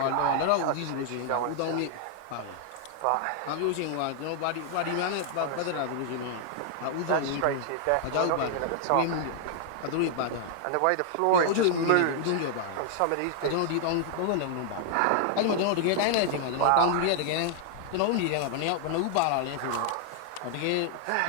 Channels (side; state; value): both; different; correlation 0.00